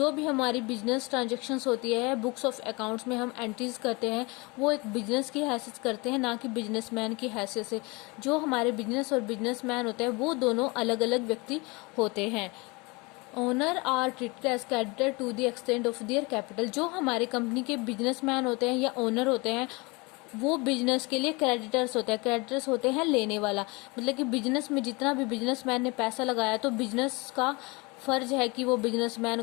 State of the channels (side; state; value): right; quieter; 26.6 dB